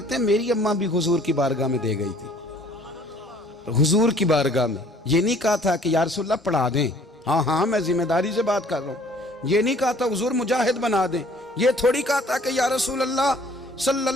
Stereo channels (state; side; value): normal; both; correlation 0.56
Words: हैं मेरी अम्मा भी हुजूर की बारगाह में दे गई थी। हुजूर की बारगाह में ये नहीं कहा था कि या रसूलल्लाह पढ़ा दें, हाँ हाँ मैं जिम्मेदारी से बात कर रहा हूँ। ये नहीं कहा था हुजूर मुजाहिद बना दें, ये थोड़ी कहा था कि या रसूलल्लाह